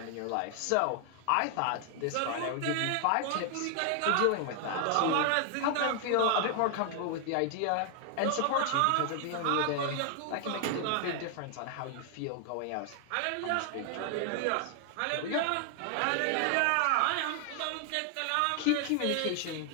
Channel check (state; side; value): different; both; correlation 0.00